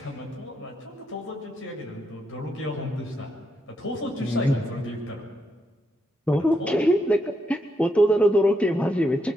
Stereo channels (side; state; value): both; normal; correlation 0.81